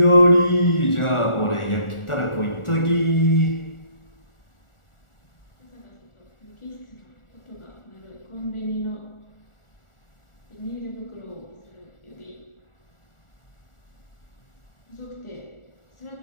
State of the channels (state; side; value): late; right; 1.4 ms